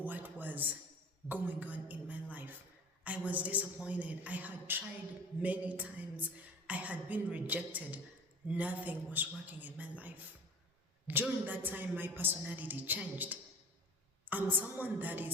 was going on in my life. I was disappointed. I had tried many times. I had been rejected. Nothing was working in my life. During that time, my personality changed. I'm someone that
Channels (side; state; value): both; normal; correlation 0.42